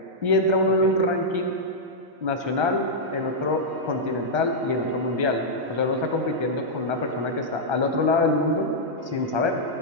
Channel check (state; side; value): late; left; 1.3 ms